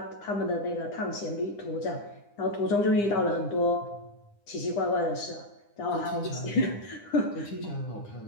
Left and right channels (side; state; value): right; late; 9.8 ms